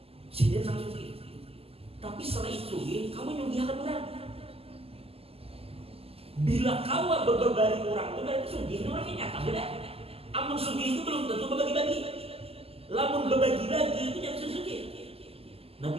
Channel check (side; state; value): left; late; 0.29 ms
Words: sidin sang sugi. Tapi selain sugi, kamu nyugi akan benar. Bila kawa berbari orang itu berarti sugih ini orangnya nyata beda. Amun sugih itu belum tentu berbagi-bagi. Lamun berbagi-bagi itu yang sugih.